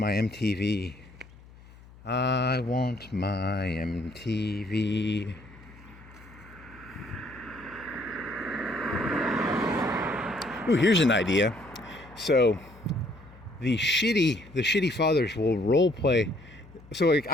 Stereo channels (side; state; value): left; noise; hum, 22 dB below the sound